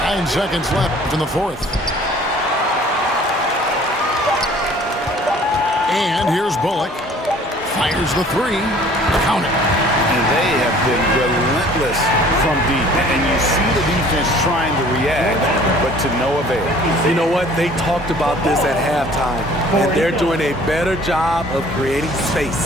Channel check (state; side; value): normal; both; correlation 0.52